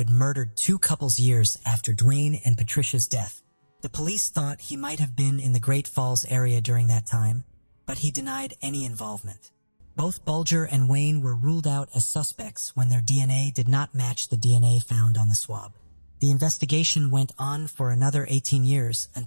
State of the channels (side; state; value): both; inverted; correlation -1.00